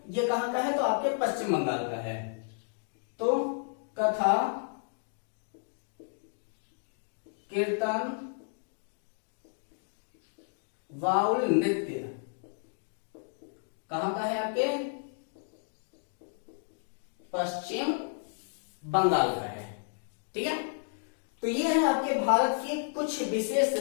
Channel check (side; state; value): right; silent; digital silence